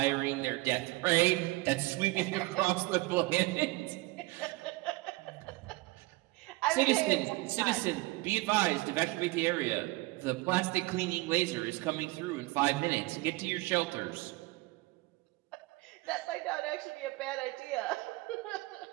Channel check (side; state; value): left; quieter; 22.0 dB